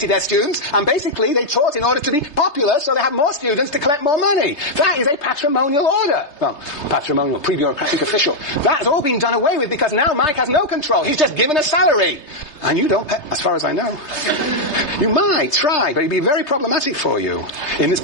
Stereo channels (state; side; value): late; right; 3.3 ms